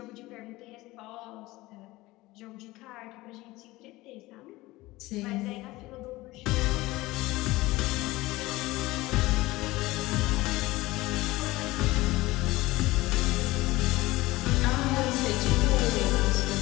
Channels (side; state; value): right; quieter; 19.5 dB